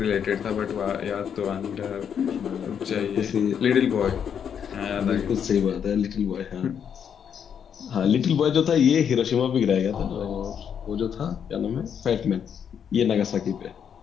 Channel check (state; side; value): quieter; right; 8.0 dB